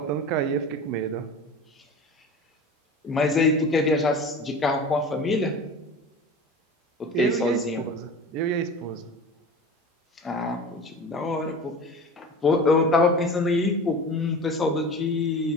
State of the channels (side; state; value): both; normal; correlation 0.35